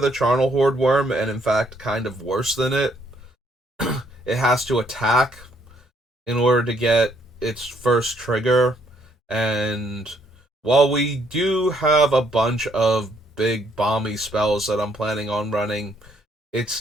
Charnel Horde Worm, and in fact, kind of worse than it, it has to attack in order to get its first trigger. And while we do have a bunch of big bomby spells that I'm planning on running,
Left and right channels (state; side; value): normal; both; correlation 0.69